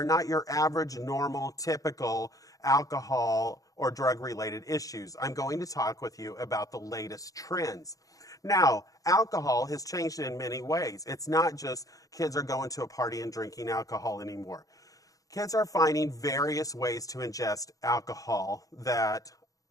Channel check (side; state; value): right; late; 0.17 ms